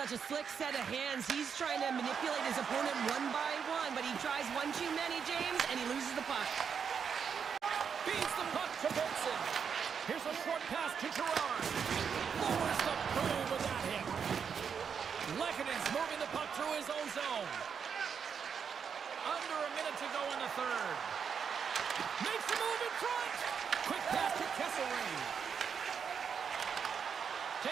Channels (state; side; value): quieter; left; 6.8 dB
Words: a slick set of hands. He's trying to manipulate his opponent one by one, but he tries one too many, James, and he loses the puck. Feeds the puck to Benson. Here's a short pass to Gerard. Lowers the boom with that hit. Lekkonen's moving the puck through his own zone. Under a minute to go in the third. Makes the move in front. Quick pass to Kesselring.